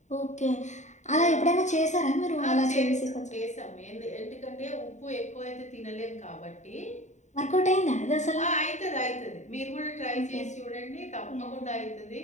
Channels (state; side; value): late; right; 0.34 ms